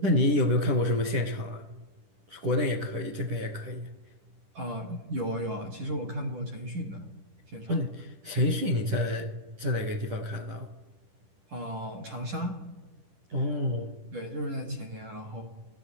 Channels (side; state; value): left; late; 10 ms